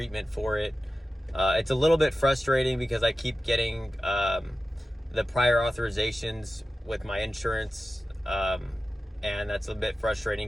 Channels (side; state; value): both; normal; correlation 0.94